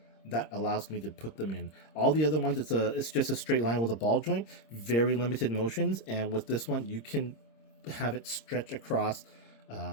that allows me to put them in. All the other ones, it's just a straight line with a ball joint, very limited motions. And with this one, you can have it stretch across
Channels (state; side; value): late; right; 26 ms